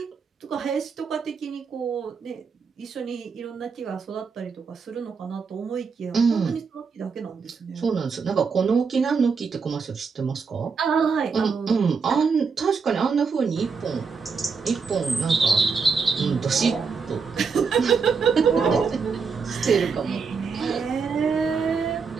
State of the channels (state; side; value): quieter; left; 5.3 dB